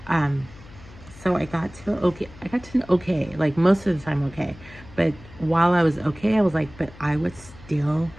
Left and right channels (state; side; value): noise; left; hum, 20 dB below the sound